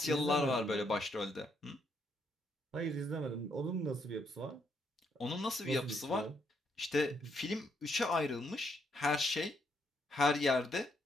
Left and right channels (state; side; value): normal; both; correlation 0.75